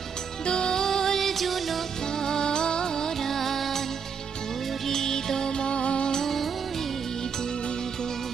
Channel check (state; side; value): quieter; left; 6.4 dB